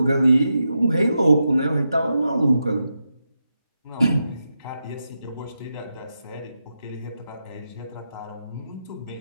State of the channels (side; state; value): both; inverted; correlation -0.88